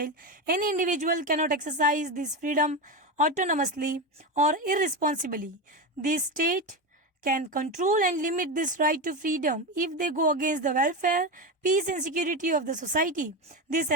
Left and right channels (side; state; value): both; normal; correlation 0.17